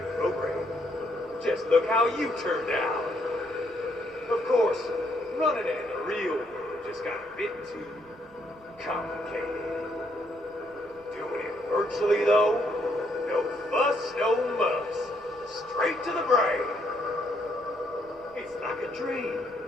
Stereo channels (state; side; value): noise; right; rumble, 28 dB below the sound